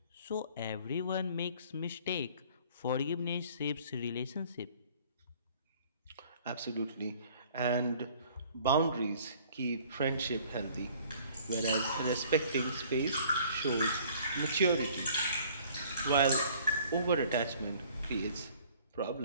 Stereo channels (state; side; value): inverted; both; correlation -0.55